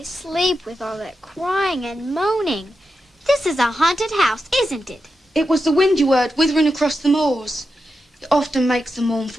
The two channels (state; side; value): normal; both; correlation 0.88